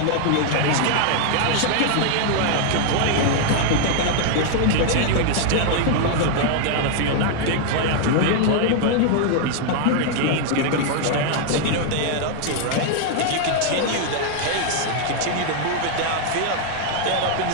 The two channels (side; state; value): both; different; correlation 0.00